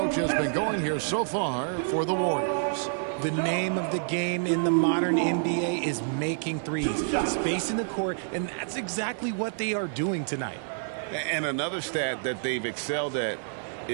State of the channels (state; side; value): silent; left; 59 dB below the other